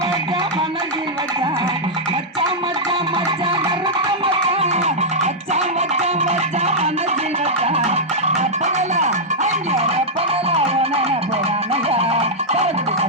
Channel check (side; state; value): both; normal; correlation -0.06